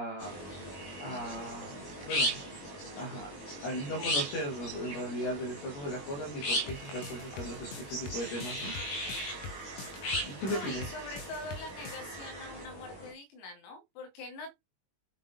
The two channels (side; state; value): right; late; 21 ms